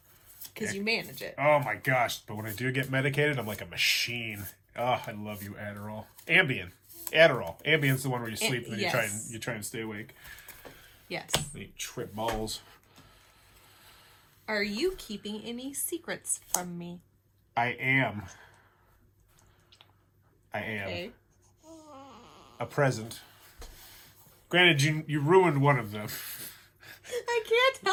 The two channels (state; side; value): identical; both; correlation 1.00